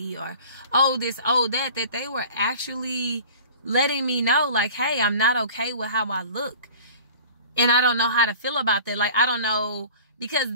or oh, this, oh, that they were actually letting me know like, hey, I'm not okay with how I look. And I don't know how to feel about that. Like, I don't know, because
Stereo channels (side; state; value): both; inverted; correlation -0.43